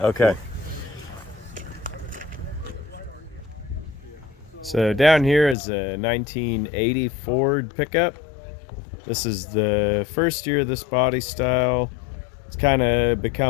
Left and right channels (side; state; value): right; drops out; at 5.6 s